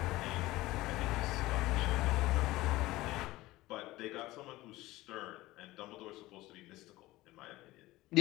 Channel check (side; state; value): right; quieter; 18.2 dB